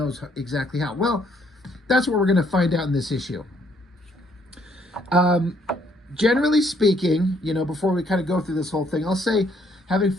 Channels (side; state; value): both; normal; correlation 0.68